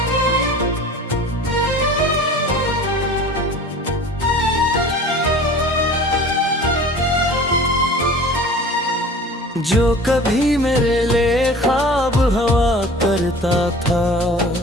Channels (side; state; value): both; normal; correlation 0.42